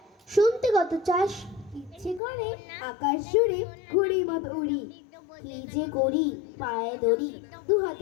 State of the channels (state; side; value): drops out; right; at 2.2 s